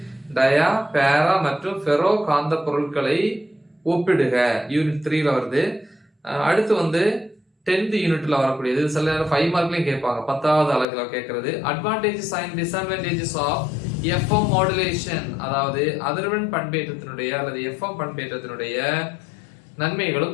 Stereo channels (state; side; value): drops out; right; at 10.9 s